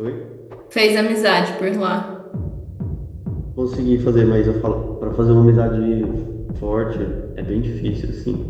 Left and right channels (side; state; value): both; identical; correlation 1.00